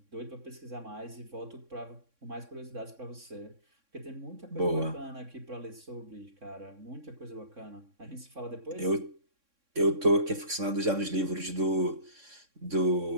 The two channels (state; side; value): late; left; 3.6 ms